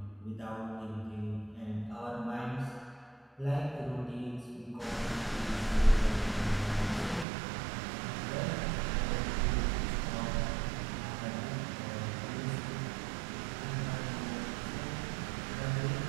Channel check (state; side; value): drops out; left; at 7.2 s